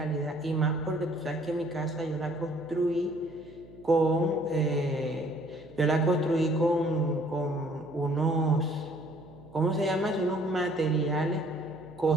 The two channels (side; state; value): right; noise; hum, 21 dB below the sound